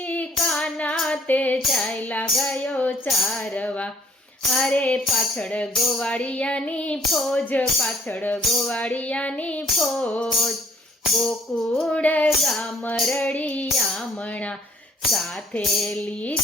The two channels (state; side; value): normal; both; correlation 0.60